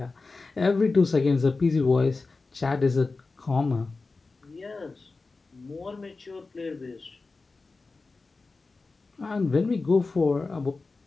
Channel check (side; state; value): right; quieter; 3.8 dB